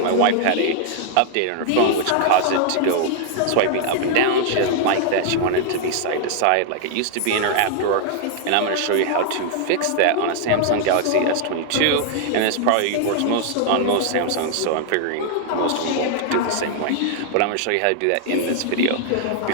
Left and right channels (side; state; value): both; different; correlation 0.00